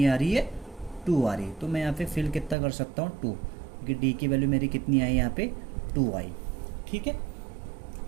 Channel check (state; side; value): drops out; left; at 2.6 s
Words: आ रही है 2 आ रही है। तो मैं यहाँ पे फिल कितना कर सकता हूँ 2, क्योंकि D की वैल्यू मेरी कितनी आई यहाँ पे 2 आई, ठीक है।